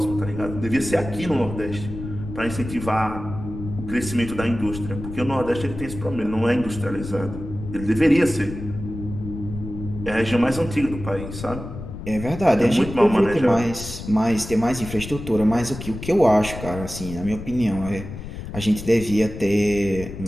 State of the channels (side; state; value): left; noise; rumble, 10 dB below the sound